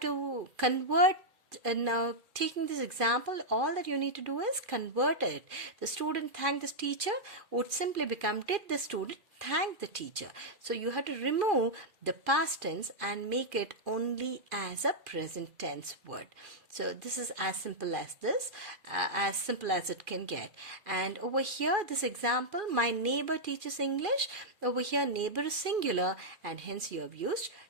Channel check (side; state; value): left; late; 2.4 ms